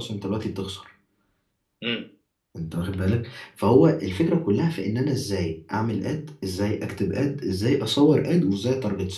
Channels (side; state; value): both; identical; correlation 1.00